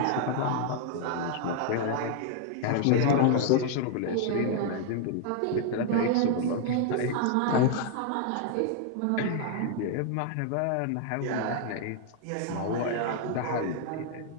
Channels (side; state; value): both; different; correlation 0.00